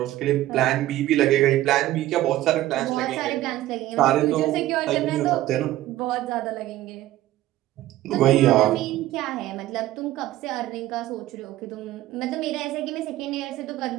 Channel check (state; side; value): quieter; left; 15.1 dB